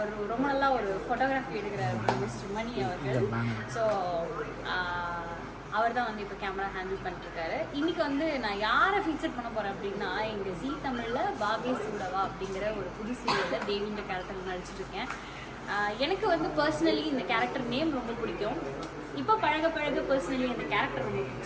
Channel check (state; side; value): identical; both; correlation 1.00